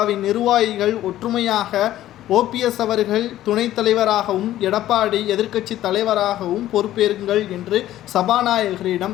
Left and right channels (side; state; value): right; quieter; 13.6 dB